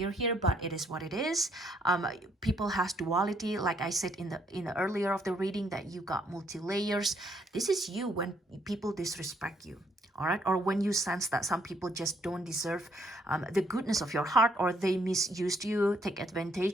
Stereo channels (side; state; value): both; normal; correlation 0.70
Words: here, but it is what it is. People has duality. Like I said in the earlier of the reading, feeling that you got multi-layers. This is you when people disrespect you. All right, or when you sense that some people just don't deserve the goodness of your heart, or they misused you, take